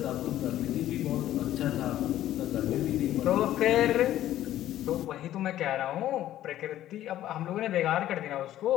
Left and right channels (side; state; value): right; quieter; 13.0 dB